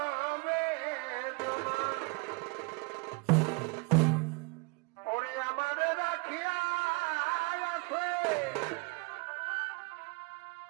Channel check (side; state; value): left; quieter; 28.4 dB